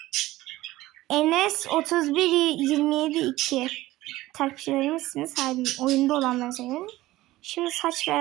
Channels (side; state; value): left; quieter; 17.2 dB